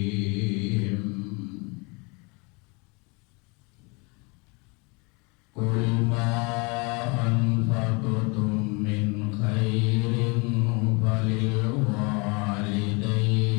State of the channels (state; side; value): quieter; right; 29.9 dB